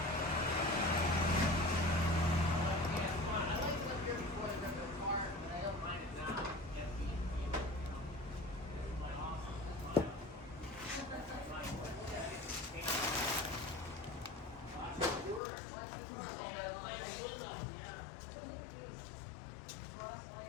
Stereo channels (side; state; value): right; drops out; at 15.4 s